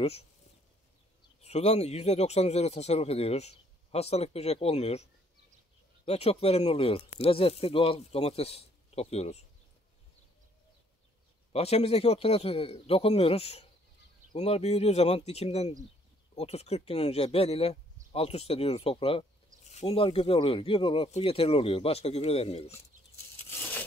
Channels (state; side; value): normal; both; correlation 0.64